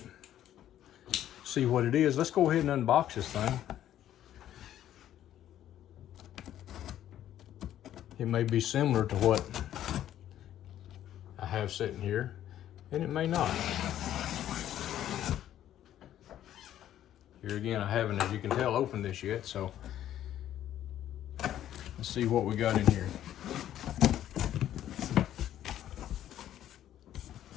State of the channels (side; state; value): right; quieter; 11.7 dB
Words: see what it is. Let's go ahead and unbox this thing. It may be similar to what I have sitting here, and it may not. Here again, I haven't, as you can tell, opened this yet, so let's see what we got in here.